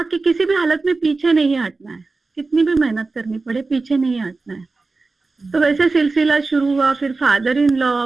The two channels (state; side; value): quieter; left; 3.8 dB